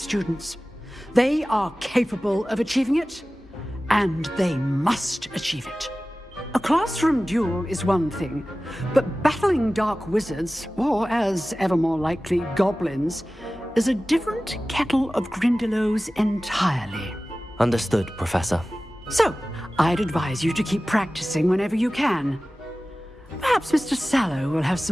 They are capable of achieving it, and they must achieve it. A classroom duel is one thing, but battling dark wizards, or as ever more likely, goblins, is a different kettle of Grindylows entirely. Understood, Professor. So, I'd advise you to keep practicing whenever you can. Perhaps Mr. Sallow will have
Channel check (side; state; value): both; normal; correlation 0.96